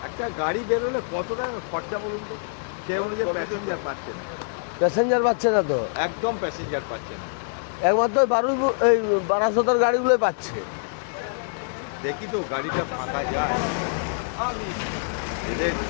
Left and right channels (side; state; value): right; silent; digital silence